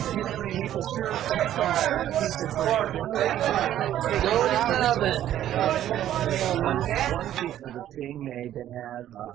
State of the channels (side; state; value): left; quieter; 11.9 dB